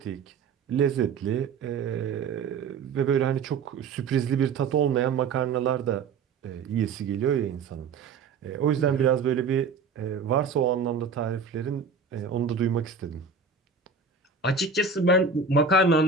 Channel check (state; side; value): quieter; left; 5.2 dB